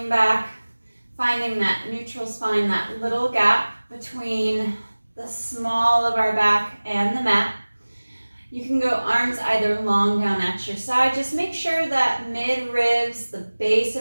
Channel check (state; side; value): inverted; both; correlation -1.00